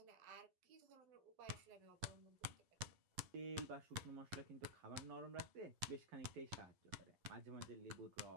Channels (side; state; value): left; late; 11 ms